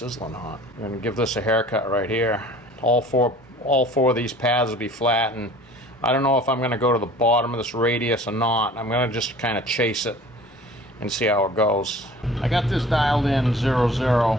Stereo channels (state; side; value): normal; both; correlation 0.46